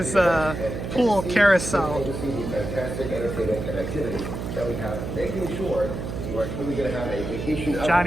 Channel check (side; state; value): right; noise; hum, 6 dB below the sound